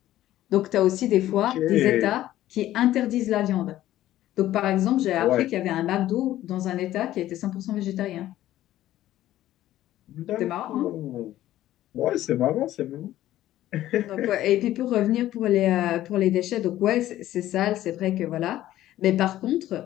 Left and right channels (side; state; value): right; quieter; 13.9 dB